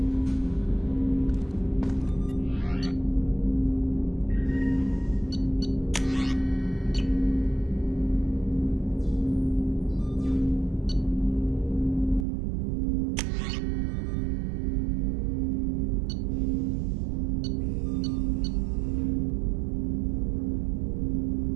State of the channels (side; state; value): left; drops out; at 12.2 s